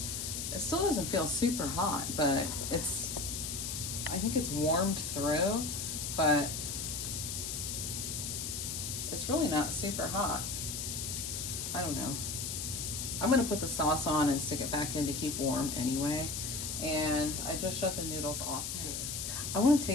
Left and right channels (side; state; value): left; noise; hiss, 3 dB below the sound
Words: it still doesn't feel super hot, but I think it's warmed through, but it's really not super hot. I don't know. I'm gonna put the sauce on and stick it back in to keep warm anyway. And I just shut the noodles off too. I want to